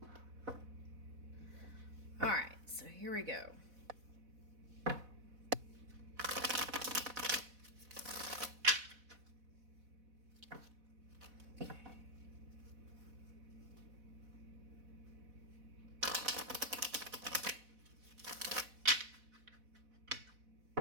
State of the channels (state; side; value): late; left; 4.1 ms